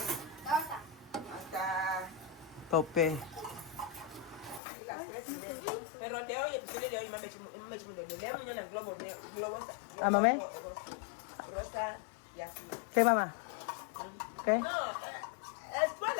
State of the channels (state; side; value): drops out; right; at 4.6 s